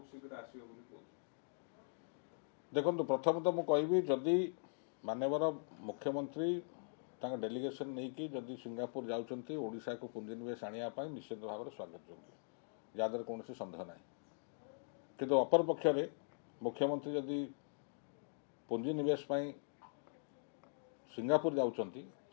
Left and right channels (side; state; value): right; silent; digital silence